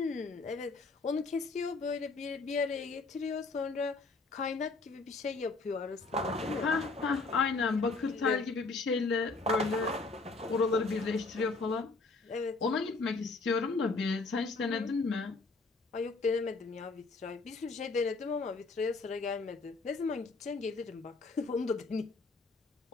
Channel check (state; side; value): quieter; right; 3.8 dB